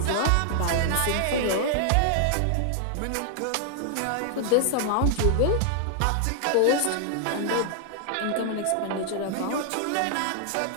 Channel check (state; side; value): different; both; correlation -0.01